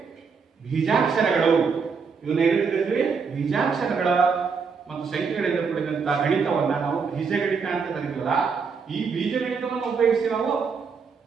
ಬೀಜಾಕ್ಷರಗಳು, ಇವನ್ನ ಏನಿರ್ತೀವಿ? ಬೀಜಾಕ್ಷರಗಳ ಮತ್ತು ಸಂಖ್ಯೆಗಳಿಂದ ಕೂಡಿದಂತಹ ಗಣಿತವನ್ನ ನಾವು ಬೀಜಗಣಿತ ಅಂತ ಕರೀತೀವಲ್ಲ, ಈ ಬೀಜಗಣಿತವನ್ನು ಉಪಯೋಗಿಸಿ ನಾವು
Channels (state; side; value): quieter; left; 5.5 dB